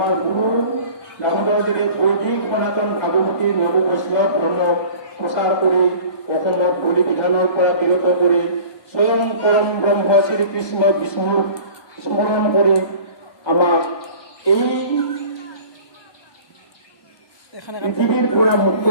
গুৰু দামোদৰদেৱে বৈদিক সনাতন ভাগৱতী নৱ বৈষ্ণৱ ধৰ্ম প্ৰচাৰ কৰি অসমত বলি বিধানৰ পৰা বিৰত কৰি স্বয়ং পৰম ব্ৰহ্ম শ্ৰীকৃষ্ণ বিষ্ণুক স্মৰণ কৰি আমাক এই পৃথিৱীৰ পৰা মুক্ত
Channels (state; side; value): late; right; 1.2 ms